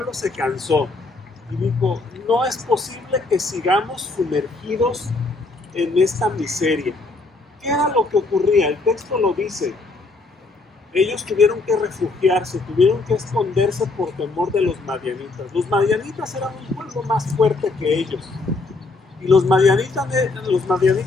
se cansó y dijo, no es posible que sigamos sumergidos en esta miseria. ¿Qué era lo que ocurría? El texto lo dice. Ellos tuvieron que refugiarse, tuvieron que esconderse por temor de los madianitas. Los madianitas eran un pueblo más fuerte que ellos. Y los madianitas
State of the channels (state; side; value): quieter; right; 3.5 dB